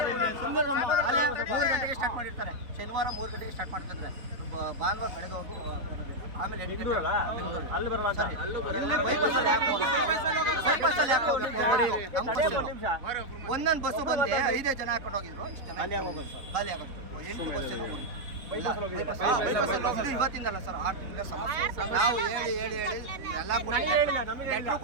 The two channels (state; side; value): late; left; 3.8 ms